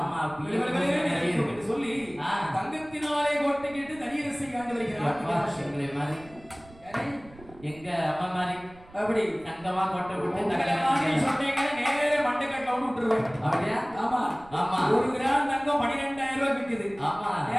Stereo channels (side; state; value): right; noise; rumble, 22 dB below the sound